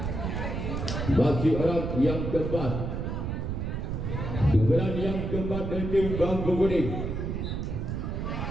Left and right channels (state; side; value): noise; right; rumble, 3 dB below the sound